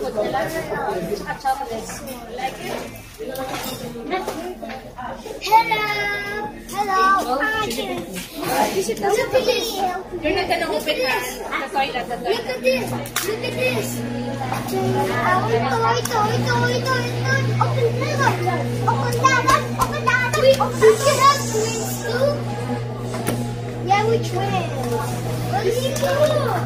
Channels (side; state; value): both; identical; correlation 1.00